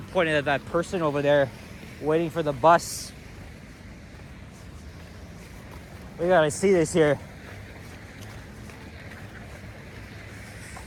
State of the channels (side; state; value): both; identical; correlation 1.00